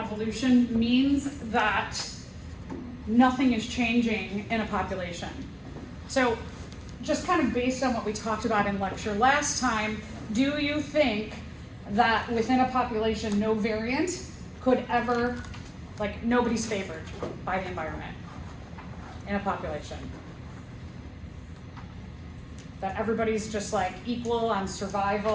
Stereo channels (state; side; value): identical; both; correlation 1.00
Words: means that nothing is changing in a population. So just kind of based on what we talked about in lecture last time, do you think that within a population no variant could ever, like nobody's favored by the environment in a population? That everybody's just like equal on